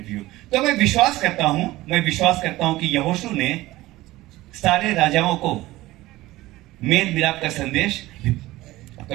तो मैं विश्वास करता हूं कि यहोशू ने सारे राजाओं को मेल मिलाप का संदेश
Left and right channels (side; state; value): left; quieter; 17.8 dB